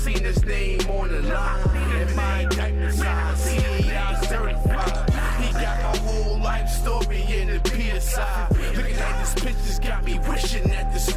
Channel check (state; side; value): identical; both; correlation 1.00